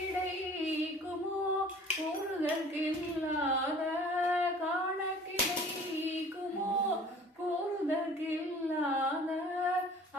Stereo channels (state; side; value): normal; both; correlation 0.48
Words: கூறுதற்கில்லாத காண கிடைக்குமோ கூறுதற்கில்லாத